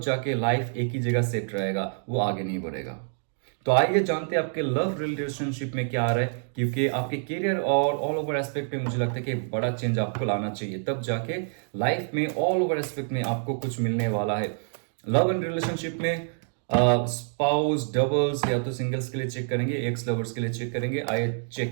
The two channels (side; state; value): left; silent; 60 dB below the other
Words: जाके लाइफ एक ही जगह सेट रहेगा, वो आगे नहीं बढ़ेगा। तो आइए जानते हैं आपके लव रिलेशनशिप में क्या आ रहा है, क्योंकि आपके करियर और ऑल ओवर एस्पेक्ट में मुझे लगता है कि बड़ा चेंज आपको लाना चाहिए, तब जाके लाइफ में ऑल ओवर एस्पेक्ट में आपको कुछ मिलने वाला है। लव एंड रिलेशनशिप में स्पाउस, डबल्स या तो सिंगल्स के लिए चेक करेंगे, एक्स लवर्स के लिए चेक करेंगे। आइए